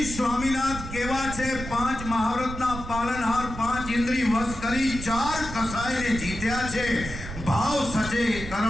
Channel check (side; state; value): right; noise; rumble, 9 dB below the sound